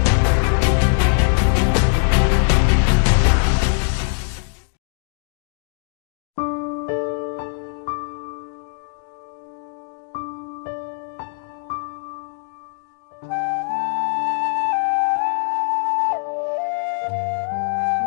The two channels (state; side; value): silent; right; digital silence